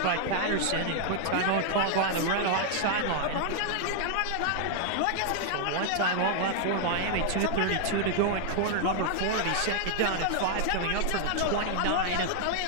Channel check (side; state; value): both; different; correlation -0.01